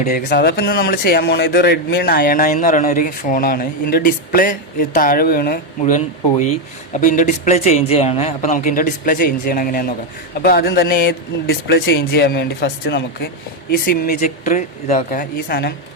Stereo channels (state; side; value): normal; both; correlation 0.05